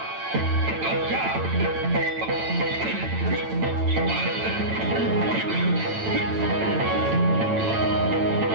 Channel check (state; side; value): late; left; 9.0 ms